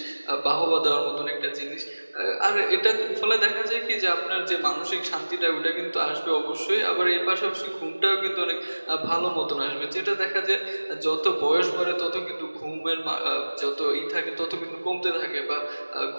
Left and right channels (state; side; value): inverted; both; correlation -1.00